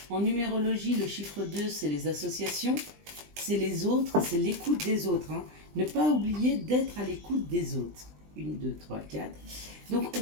En numérologie, le chiffre 2, c'est les associations, c'est les autres, c'est l'écoute des autres. Ne pas oublier d'être à l'écoute des autres. 1, 2, 3, 4. Donc, on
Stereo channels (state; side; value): late; left; 20 ms